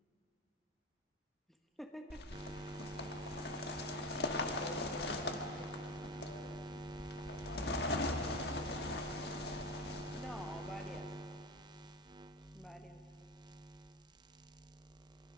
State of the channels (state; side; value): normal; both; correlation 0.24